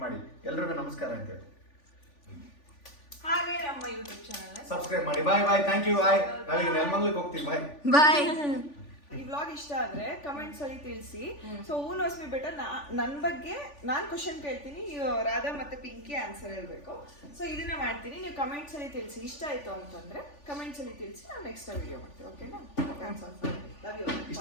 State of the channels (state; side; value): late; right; 3.4 ms